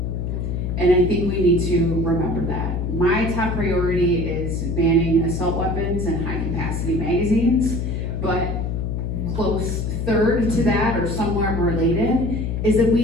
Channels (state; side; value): noise; left; hum, 2 dB below the sound